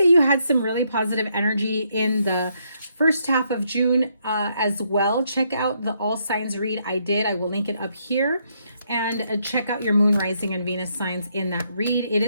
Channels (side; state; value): both; inverted; correlation -0.75